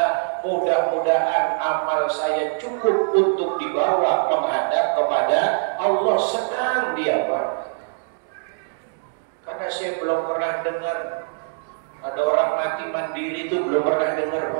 Mudah-mudahan amal saya cukup untuk dibawa menghadap kepada Allah. Senang dia Pak. Karena saya belum pernah dengar ada orang mati mandiri, itu belum pernah dengar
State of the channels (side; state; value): left; silent; digital silence